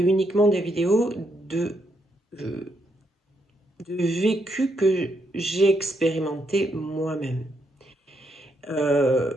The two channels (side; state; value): both; normal; correlation 0.78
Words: des vidéos de vécu que j'ai expérimenté moi-même.